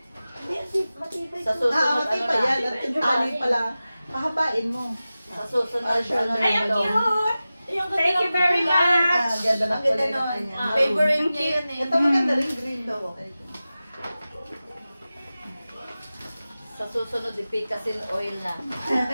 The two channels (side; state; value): both; inverted; correlation -0.95